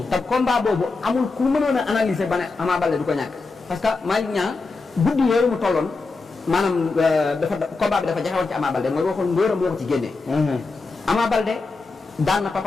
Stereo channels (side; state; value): right; quieter; 3.9 dB